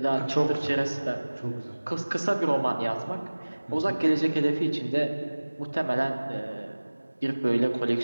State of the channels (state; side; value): inverted; both; correlation -1.00